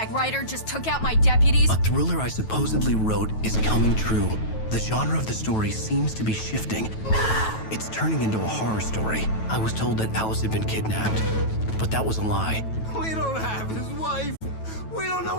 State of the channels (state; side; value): late; right; 9.2 ms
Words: Ryder just took out my deputies? A thriller I supposedly wrote is coming true. The genre of the story seems to be shifting. It's turning into a horror story. I was told that Alice had been kidnapped, but that was a lie. We don't have his wife. We don't know